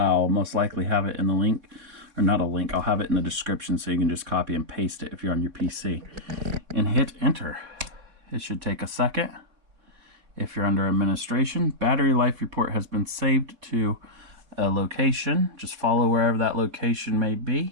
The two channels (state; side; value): late; left; 4.0 ms